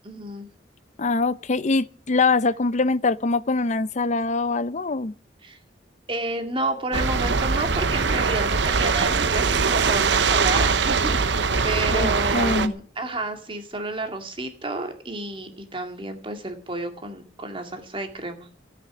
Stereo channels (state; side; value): normal; both; correlation 0.12